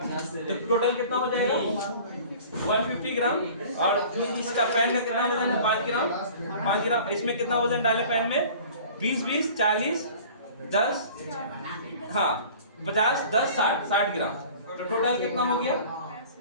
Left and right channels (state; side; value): inverted; both; correlation -0.45